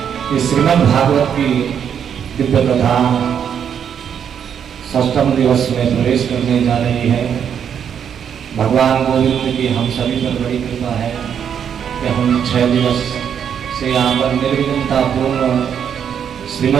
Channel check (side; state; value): left; quieter; 8.2 dB